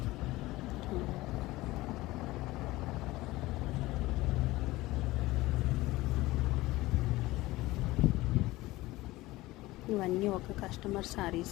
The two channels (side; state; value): right; quieter; 18.9 dB